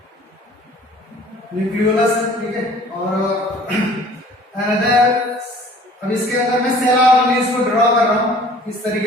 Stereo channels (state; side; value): normal; both; correlation 0.51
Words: Nucleolus, ठीक है। और अनदर, अब इसके अंदर मैं सेल ऑर्गेनेल्स को ड्रॉ कर रहा हूं इस